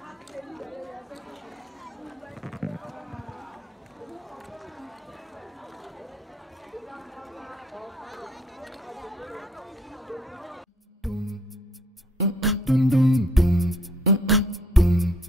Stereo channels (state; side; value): normal; both; correlation 0.64